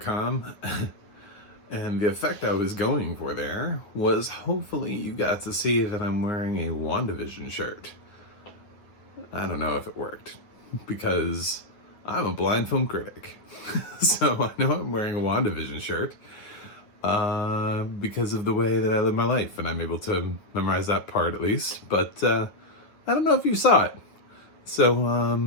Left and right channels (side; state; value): right; late; 9.4 ms